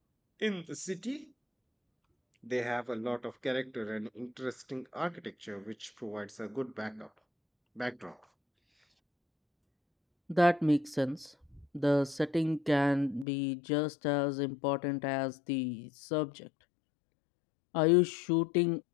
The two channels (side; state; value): right; drops out; at 13.2 s